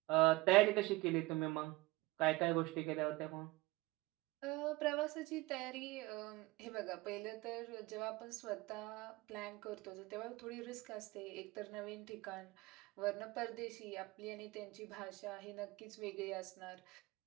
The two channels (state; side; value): quieter; left; 21.3 dB